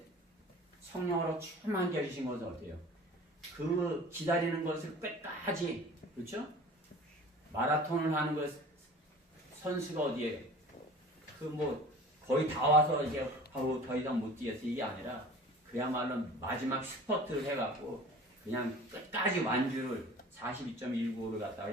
성령으로 충만케 해주신 것은 어떻게 해요? 그 기다리는 것을 끝까지, 그렇죠? 마라톤을 하는 것 선수가 어디에요? 거의 다 와서 이제 더 이상 못 뛰겠어. 이게 아니라 그야말로 마지막 스퍼트를 해갖고 그냥 끝까지 완주를 42.195를 갖다가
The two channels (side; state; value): both; normal; correlation 0.43